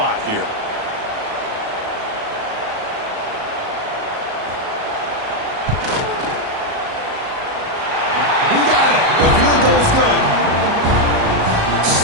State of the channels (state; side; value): late; left; 37 ms